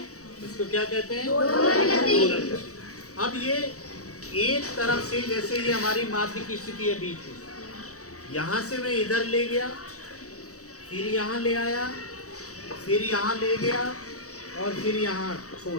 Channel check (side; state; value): right; late; 0.65 ms